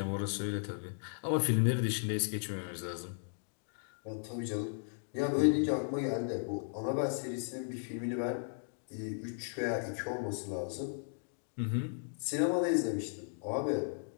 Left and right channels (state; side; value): silent; right; digital silence